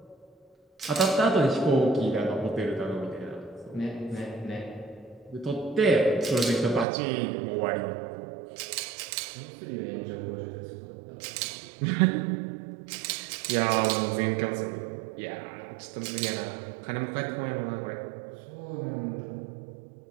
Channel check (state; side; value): drops out; left; at 6.9 s